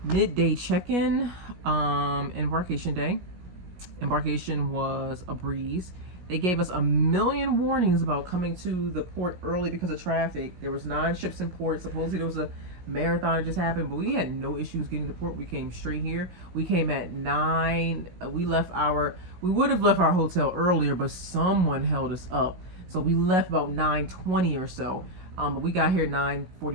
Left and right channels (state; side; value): late; left; 17 ms